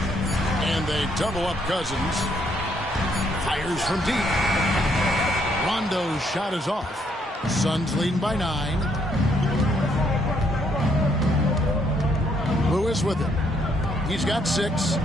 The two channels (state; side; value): normal; both; correlation 0.71